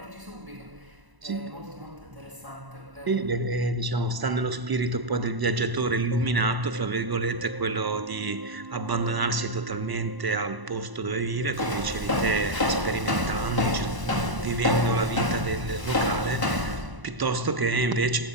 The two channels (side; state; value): left; late; 1.0 ms